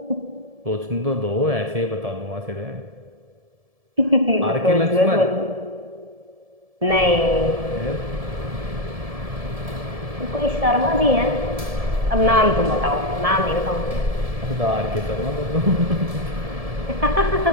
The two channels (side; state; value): left; late; 1.7 ms